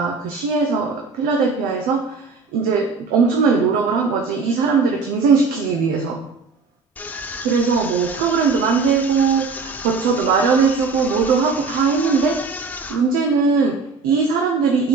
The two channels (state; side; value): quieter; left; 4.5 dB